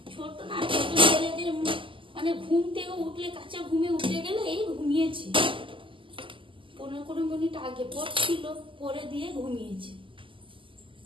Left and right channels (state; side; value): late; left; 0.25 ms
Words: ছোট না, ছোট ছেলেদের মানে ঘুম থেকে উঠলে, কাঁচা ঘুমে উঠে গেলে, এই ঘুমিয়েছে 15-20 মিনিট আগে পড়ছিল, পরে দিয়ে ঘুমিয়েছে।